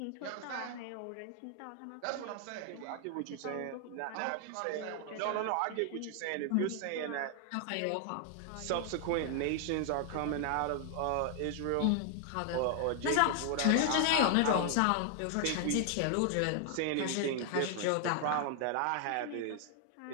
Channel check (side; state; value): both; different; correlation 0.00